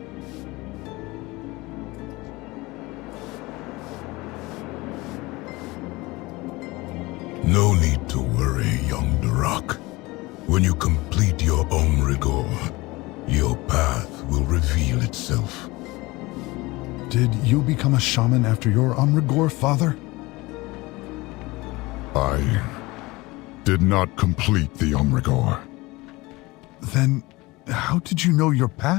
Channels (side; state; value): right; quieter; 21.9 dB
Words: No need to worry, young Durak. When you complete your Omrigor, your path will reveal itself. Did you become a shaman after your Omrigor, father? I did not complete the Omrigor. Then, how did you know your